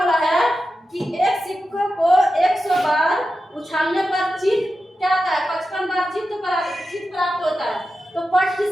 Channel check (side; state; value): both; normal; correlation 0.91